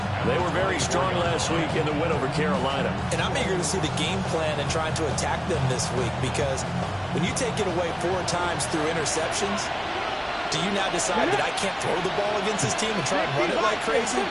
They were very strong last week in the win over Carolina. And I'm eager to see the game plan and trying to attack them this week, because when you take it away 4 times through interceptions, do you now decide that I can't throw the ball against this team and try and run it like crazy?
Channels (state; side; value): identical; both; correlation 1.00